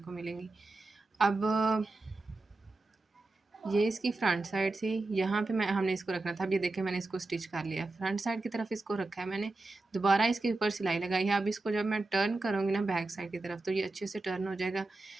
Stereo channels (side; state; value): left; quieter; 3.1 dB